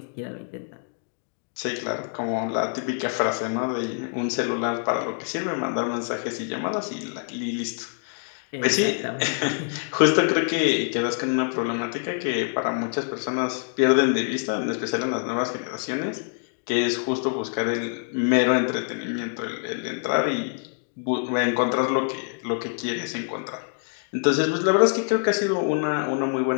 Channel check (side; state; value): right; silent; 55 dB below the other